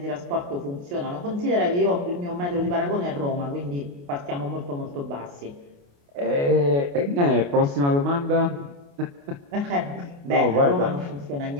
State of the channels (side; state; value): left; late; 28 ms